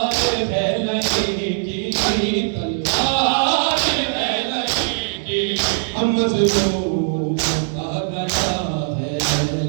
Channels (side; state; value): left; silent; digital silence